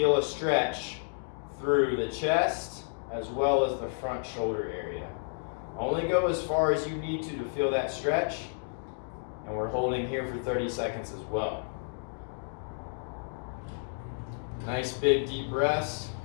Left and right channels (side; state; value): right; silent; digital silence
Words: a stretch through the chest as well as the front shoulder area. Only go as far as you need to feel that stretch. And we're holding here for 30 seconds as well. Nice big deep breaths.